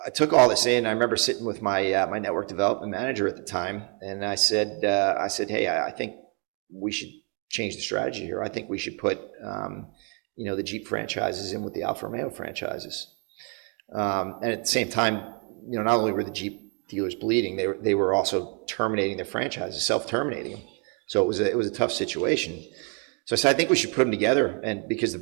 took all this in. I remember sitting with my my network development manager at the time, and I said, hey, I think we should change the strategy here. I think we should put the Jeep franchises in with the Alfa Romeo franchises. And at the same time, not only were the Jeep dealers bleeding, they were also terminating their franchises, self-terminating them. So it was a tough situation. So I said, I think we should put them together, and because the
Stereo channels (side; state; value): left; quieter; 38.4 dB